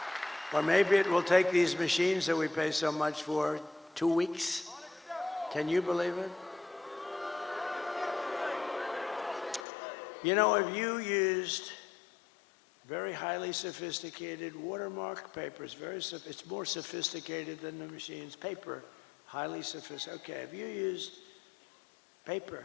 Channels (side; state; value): right; drops out; at 9.7 s